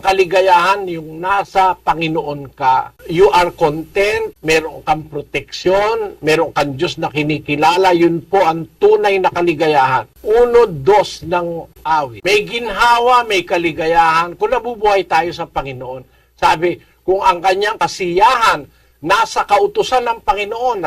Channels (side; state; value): both; identical; correlation 1.00